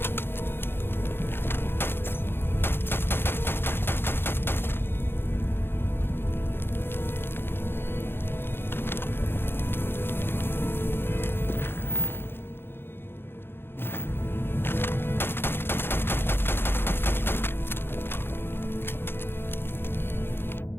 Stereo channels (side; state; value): right; late; 0.11 ms